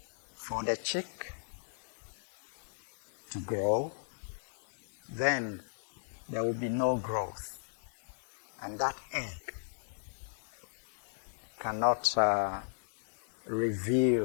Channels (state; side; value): silent; right; digital silence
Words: for the chick to grow, then there will be no growth. And that egg cannot